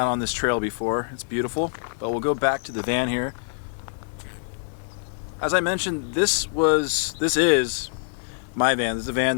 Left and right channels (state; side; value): silent; right; digital silence